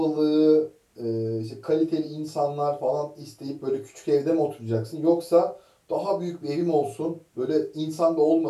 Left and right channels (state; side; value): identical; both; correlation 1.00